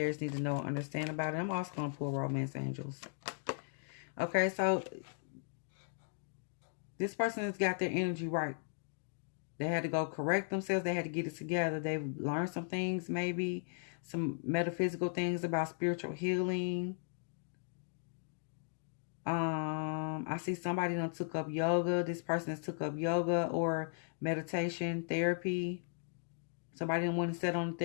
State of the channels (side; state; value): right; silent; digital silence